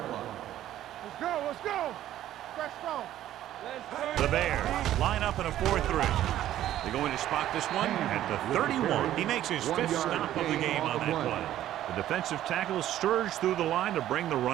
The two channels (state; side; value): quieter; left; 12.7 dB